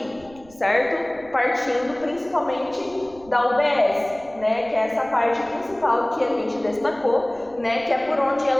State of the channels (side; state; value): right; noise; rumble, 25 dB below the sound